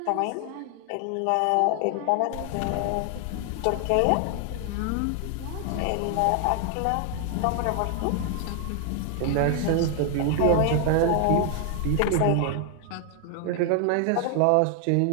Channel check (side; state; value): both; different; correlation 0.00